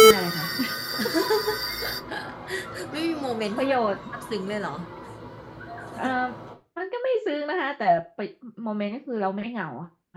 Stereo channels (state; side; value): identical; both; correlation 1.00